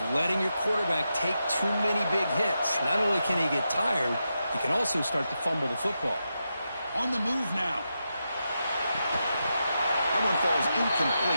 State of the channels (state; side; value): inverted; both; correlation -0.87